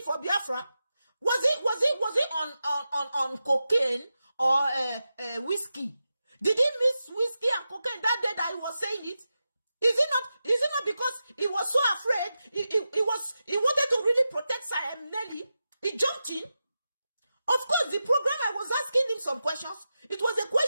for Biafra? Was it on cocaine or whiskey? Did he miss whiskey and cocaine that day that he was saying it? Is it not because he was so afraid? He wanted to really protect Nelly. He jumped in. Of course, the program I was asking him some questions. It was a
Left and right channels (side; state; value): both; inverted; correlation -0.91